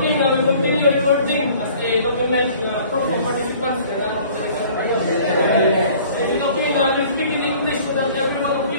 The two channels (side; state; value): both; inverted; correlation -0.51